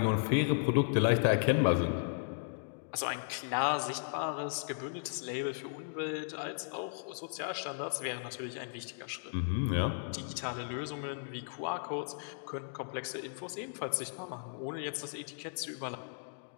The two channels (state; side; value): silent; right; digital silence